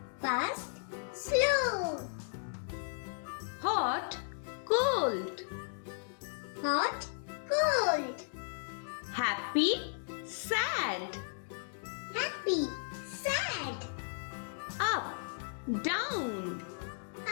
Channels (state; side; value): silent; right; digital silence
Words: Fast, slow. Hot, cold. Hot, cold. Happy, sad. Happy, sad. Up, down.